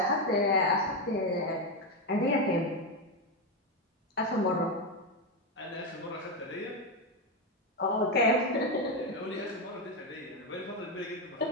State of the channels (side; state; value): both; normal; correlation 0.08